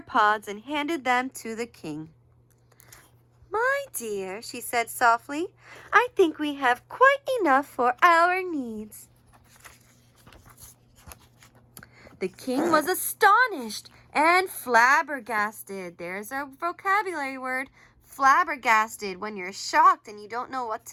pods and handed them to the king. "My dear," she said softly, "I think we have quite enough for our needs." The king was astonished and flabbergasted. There's our vocabulary word, flabbergasted, when you're shocked and you don't know what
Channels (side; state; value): both; identical; correlation 1.00